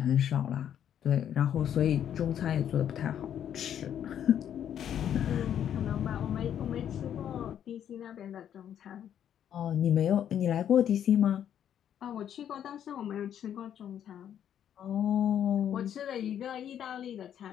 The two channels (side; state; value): right; quieter; 9.7 dB